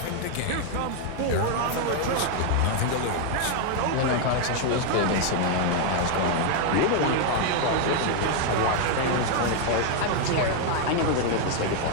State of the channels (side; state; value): both; different; correlation 0.00